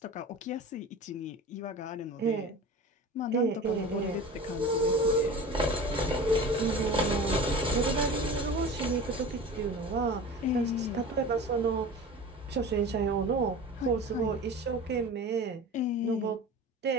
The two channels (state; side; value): normal; both; correlation 0.35